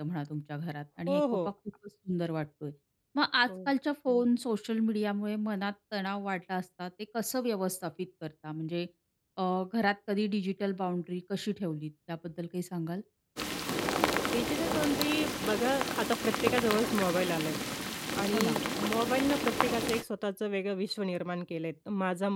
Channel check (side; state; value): both; identical; correlation 1.00